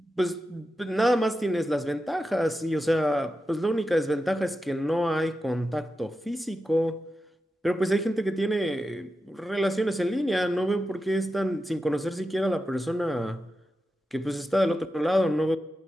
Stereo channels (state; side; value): normal; both; correlation 0.90